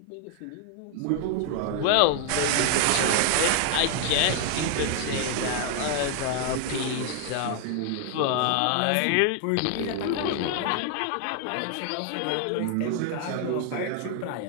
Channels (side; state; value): both; different; correlation 0.00